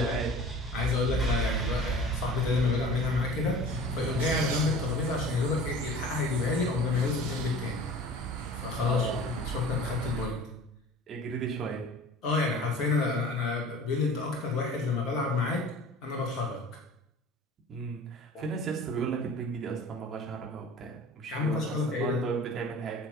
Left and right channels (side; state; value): both; normal; correlation 0.42